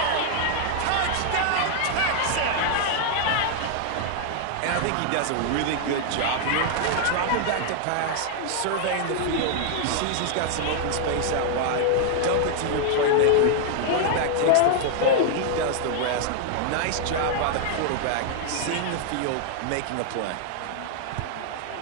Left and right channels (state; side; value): different; both; correlation 0.00